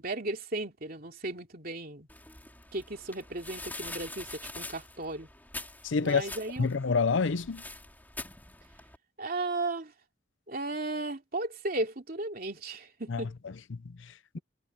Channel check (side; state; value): both; normal; correlation -0.02